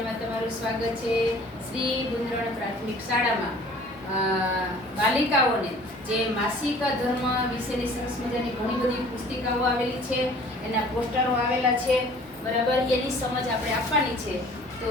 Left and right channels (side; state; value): both; normal; correlation 0.50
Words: તમારું સ્વાગત છે. શ્રી ગુંદરણ પ્રાથમિક શાળામાં બાલિકાઓને જે માસિક ધર્મ વિશેની સરસ મજાની ઘણી બધી પુસ્તિકાઓ આવેલી છે, એના પોસ્ટરો આવેલા છે, બરાબર. એની સમજ આપણે આપવાની છે, તો